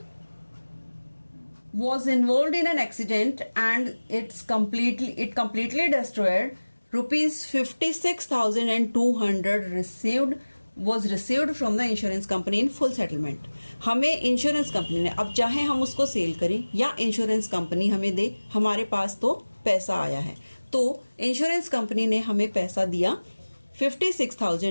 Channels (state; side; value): inverted; both; correlation -1.00